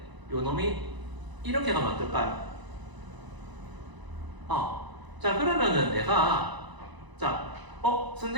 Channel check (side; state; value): left; late; 1.0 ms